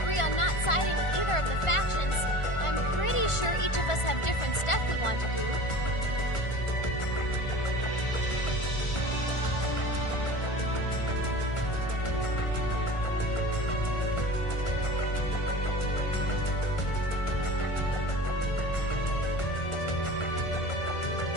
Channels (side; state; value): right; late; 1.4 ms